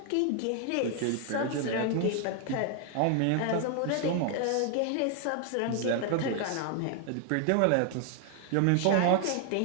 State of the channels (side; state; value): both; different; correlation 0.00